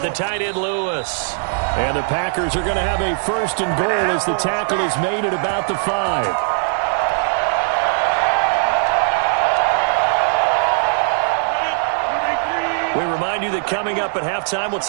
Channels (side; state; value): left; silent; 63 dB below the other